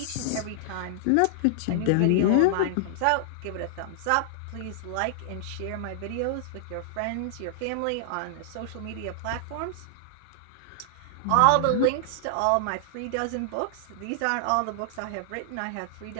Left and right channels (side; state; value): both; different; correlation -0.01